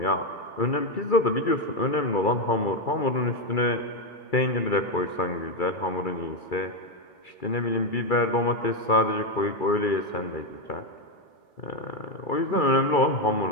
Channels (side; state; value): right; late; 2.3 ms